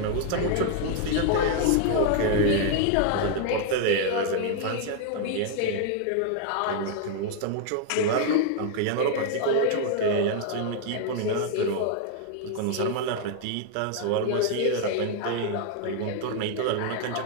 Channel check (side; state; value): both; different; correlation 0.00